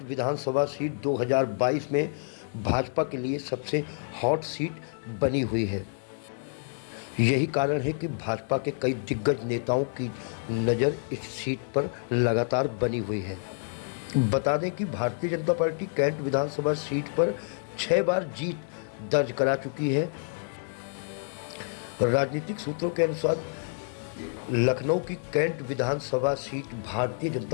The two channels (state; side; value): silent; right; digital silence